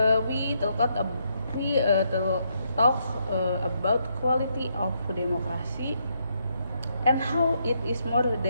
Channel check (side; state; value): both; inverted; correlation -0.76